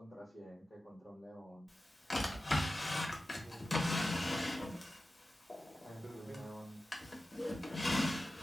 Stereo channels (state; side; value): normal; both; correlation 0.94